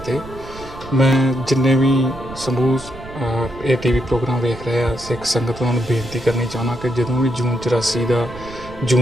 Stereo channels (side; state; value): right; noise; rumble, 16 dB below the sound